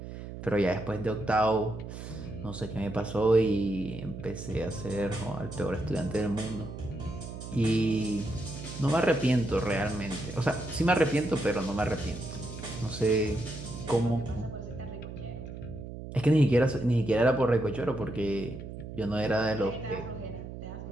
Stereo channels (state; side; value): noise; right; hum, 10 dB below the sound